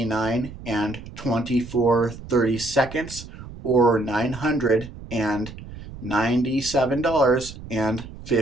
and 24 30-seconds, or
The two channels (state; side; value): noise; right; rumble, 14 dB below the sound